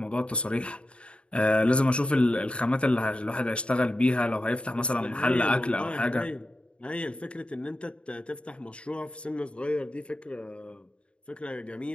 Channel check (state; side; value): late; right; 0.058 ms